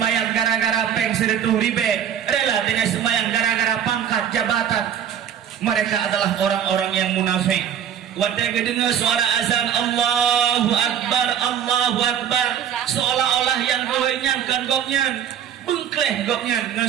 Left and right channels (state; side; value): quieter; left; 9.1 dB